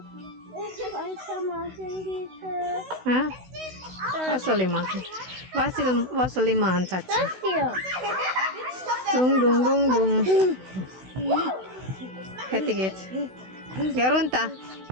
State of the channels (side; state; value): left; late; 16 ms